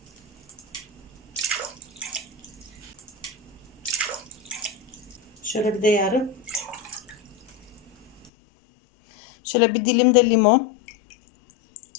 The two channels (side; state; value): right; drops out; at 8.3 s